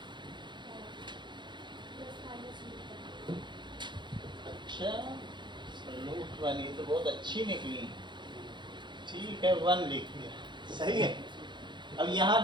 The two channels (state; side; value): late; left; 0.22 ms